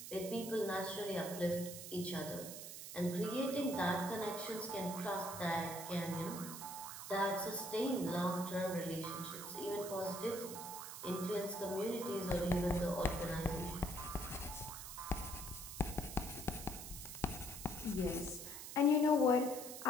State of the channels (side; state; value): right; noise; hiss, 9 dB below the sound